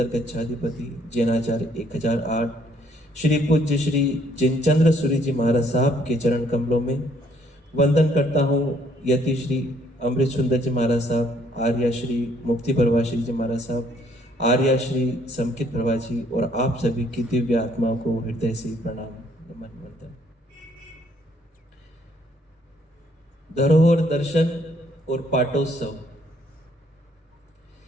कच्छाधिपति, जैनाचार्य 1008 श्री पूज्य श्री जिनचंद्र सूरी जी महाराज साहब के चरण कमलों में वंदन करता हूँ। यति श्री अमृत सुंदर जी महाराज साहब, आर्या श्री मुक्ति प्रभा श्री जी महाराज साहब, आर्या श्री समकित प्रभा जी और आप सभी की दिव्य आत्मा को हृदय से प्रणाम नमन वंदन। धरोहर दर्शन और पाटोत्सव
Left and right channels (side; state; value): both; normal; correlation 0.66